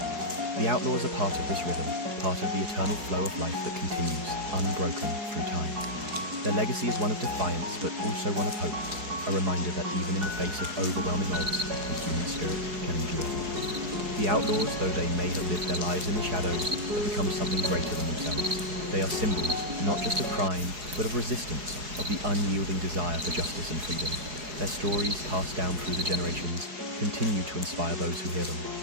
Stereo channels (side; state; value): left; late; 4.7 ms